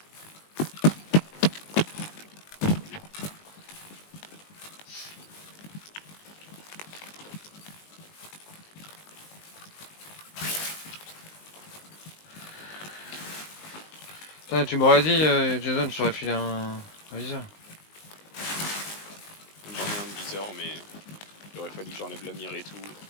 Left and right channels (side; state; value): right; late; 19 ms